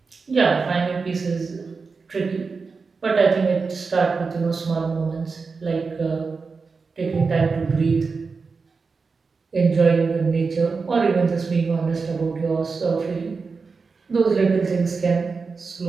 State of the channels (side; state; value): left; quieter; 4.7 dB